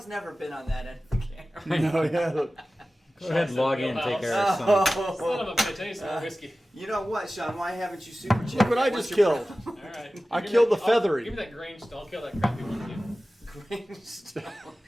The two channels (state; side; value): normal; both; correlation 0.96